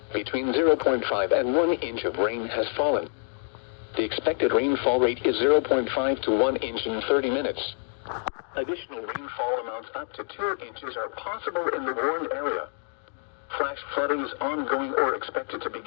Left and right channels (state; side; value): silent; right; 60 dB below the other